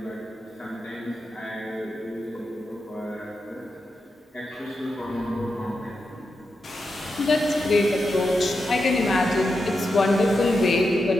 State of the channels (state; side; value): normal; both; correlation 0.88